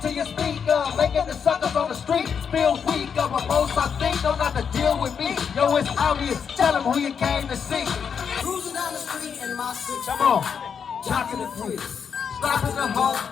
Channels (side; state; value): right; quieter; 6.9 dB